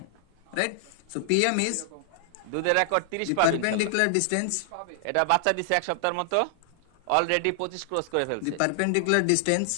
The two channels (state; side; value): different; both; correlation -0.01